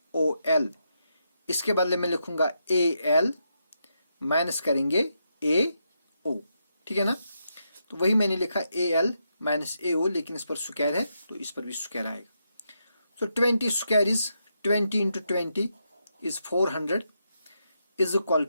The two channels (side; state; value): both; inverted; correlation -0.82